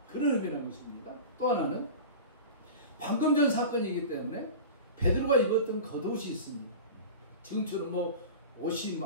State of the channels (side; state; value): both; inverted; correlation -0.32